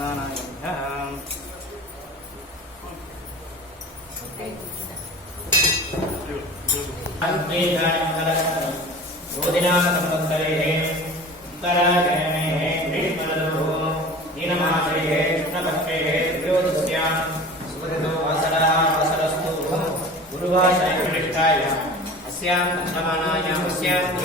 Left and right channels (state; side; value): normal; both; correlation 0.38